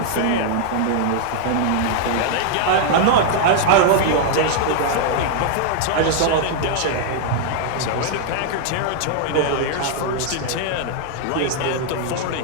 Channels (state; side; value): different; both; correlation 0.00